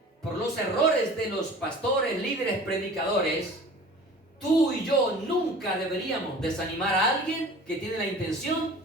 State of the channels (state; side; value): normal; both; correlation 0.43